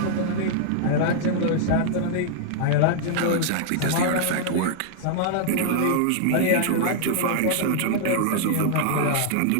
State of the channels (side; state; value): both; different; correlation -0.01